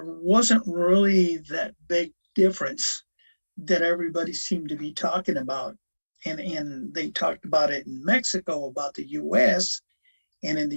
wasn't really that big difference that everybody seemed to be talking about. And they talked about it in Mexico about the US and in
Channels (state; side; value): inverted; both; correlation -1.00